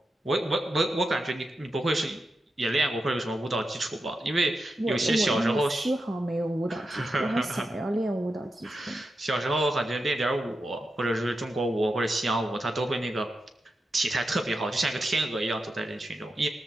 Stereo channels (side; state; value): both; normal; correlation 0.89